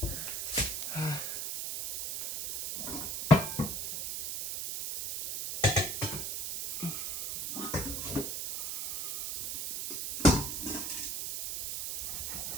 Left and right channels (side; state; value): right; noise; hiss, 4 dB below the sound